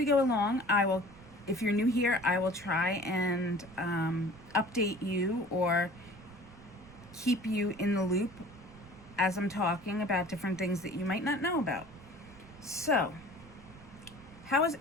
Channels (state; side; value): noise; right; rumble, 21 dB below the sound